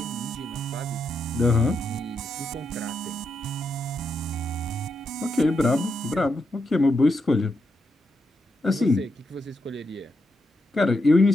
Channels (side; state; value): both; normal; correlation 0.83